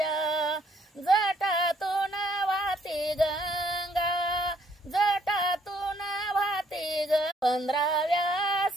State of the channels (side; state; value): both; normal; correlation 0.67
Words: जटातून वाहती गंगा, जटातून वाहती ग. 15व्या